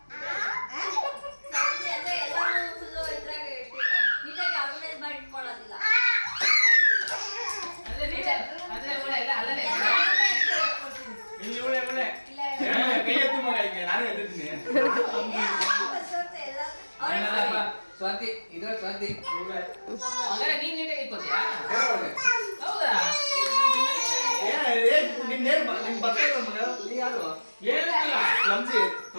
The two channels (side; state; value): both; inverted; correlation -1.00